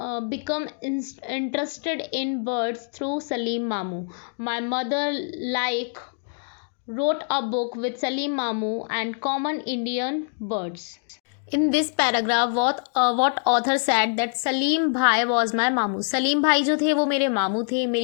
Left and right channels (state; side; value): silent; right; 62 dB below the other